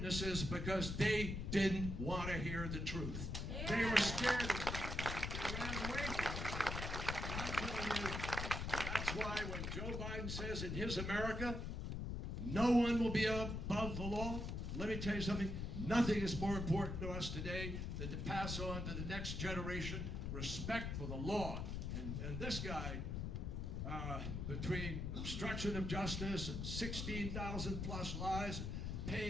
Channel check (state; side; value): noise; left; rumble, 3 dB below the sound